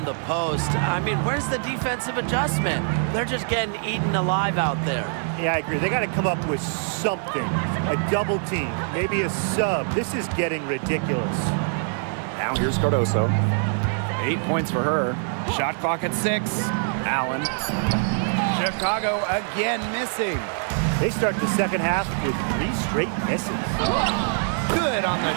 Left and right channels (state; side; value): silent; left; 62 dB below the other